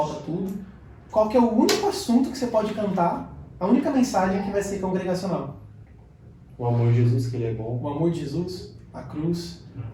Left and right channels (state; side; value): identical; both; correlation 1.00